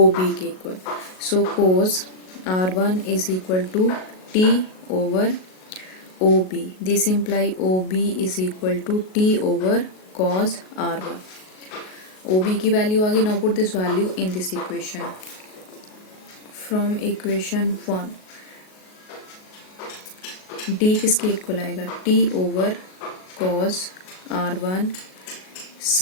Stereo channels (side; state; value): right; late; 38 ms